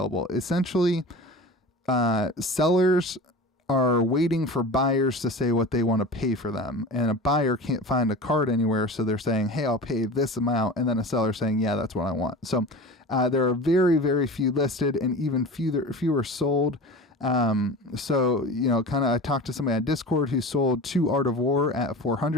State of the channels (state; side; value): normal; both; correlation 0.34